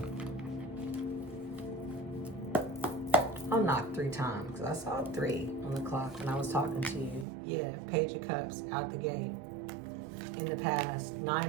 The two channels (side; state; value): left; drops out; at 7.2 s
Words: I'll knock 3 times because I saw 3 on the clock when I was talking to you. Yeah, Page of Cups out the gate. In the past,